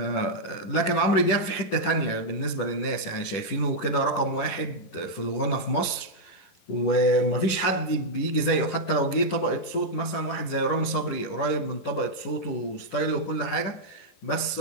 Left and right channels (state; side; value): late; right; 10 ms